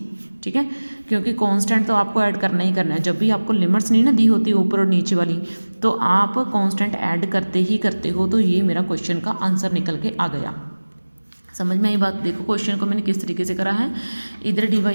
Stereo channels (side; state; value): both; inverted; correlation -1.00